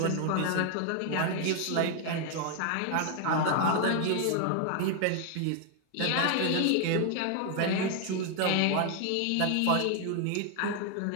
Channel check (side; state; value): both; different; correlation 0.00